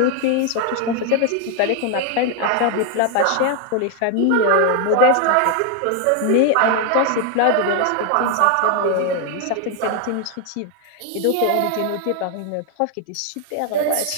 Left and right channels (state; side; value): different; both; correlation 0.00